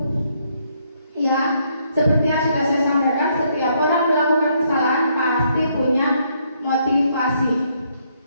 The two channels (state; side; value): inverted; both; correlation -0.72